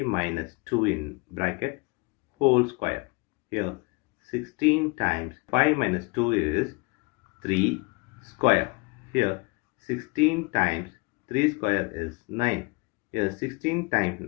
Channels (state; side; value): quieter; right; 28.3 dB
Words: minus 2 in bracket whole square. Here 16 times 5 minus 2 is 3 square. Here 16 times 3 square is 9. Here 16 times